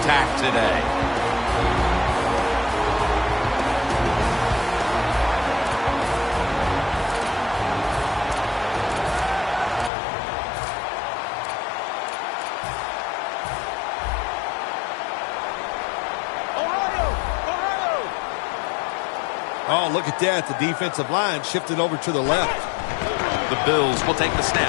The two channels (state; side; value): drops out; right; at 9.9 s